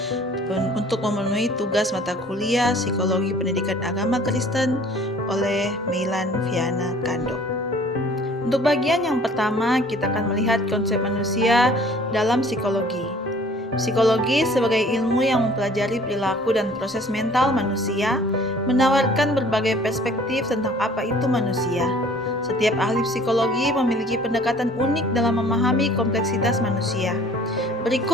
untuk memenuhi tugas mata kuliah Psikologi Pendidikan Agama Kristen oleh Meilan Viana Kando. Untuk bagian yang pertama, kita akan melihat konsep manusia dalam psikologi. Psikologi sebagai ilmu yang mempelajari perilaku dan proses mental manusia menawarkan berbagai perspektif tentang apa itu manusia. Setiap ahli psikologi memiliki pendekatan unik dalam memahami kompleksitas manusia.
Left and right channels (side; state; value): both; normal; correlation 0.52